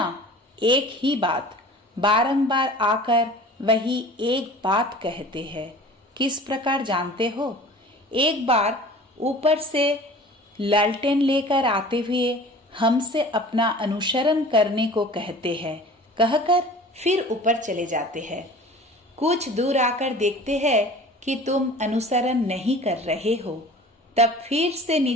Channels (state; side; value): normal; both; correlation 0.43